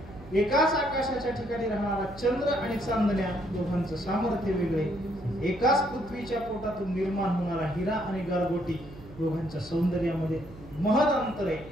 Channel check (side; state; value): right; noise; hum, 18 dB below the sound